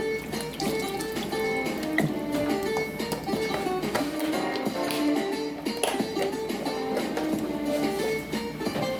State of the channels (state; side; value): identical; both; correlation 1.00